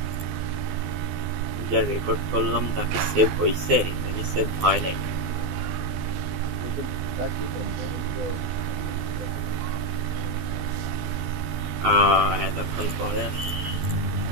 যা রেকর্ড করলাম তাকে সেভ হইছে নাকি সেভ হয় নাই? এতক্ষণ পরে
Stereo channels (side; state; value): left; late; 12 ms